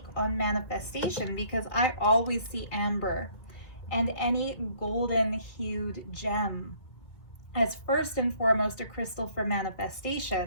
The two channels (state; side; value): late; right; 2.3 ms